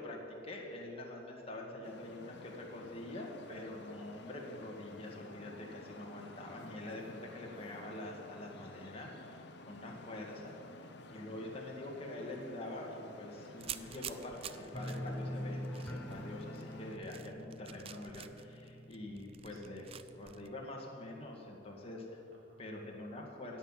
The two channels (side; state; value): both; normal; correlation 0.40